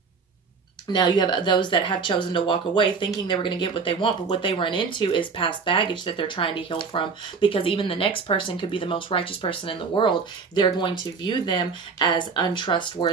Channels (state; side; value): quieter; left; 5.1 dB